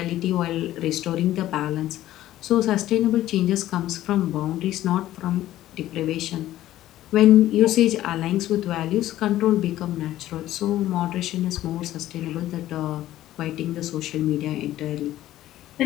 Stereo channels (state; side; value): quieter; right; 14.0 dB